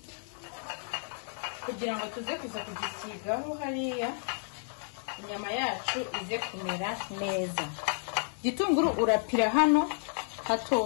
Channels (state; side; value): silent; right; 57 dB below the other